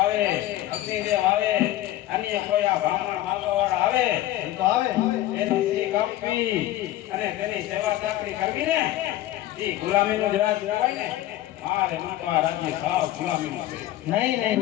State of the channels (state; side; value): quieter; right; 14.4 dB